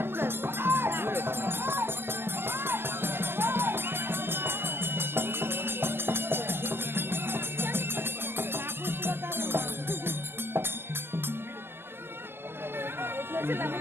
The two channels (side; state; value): left; late; 0.11 ms